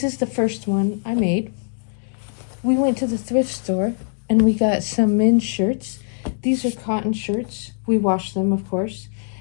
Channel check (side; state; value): right; silent; digital silence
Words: is the first one I made. We went to the thrift store and we got some men's shirts. These are cotton shirts. We washed them, of course.